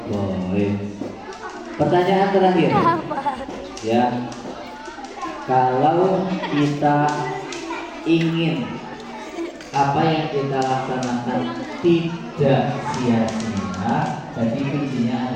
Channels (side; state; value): both; identical; correlation 1.00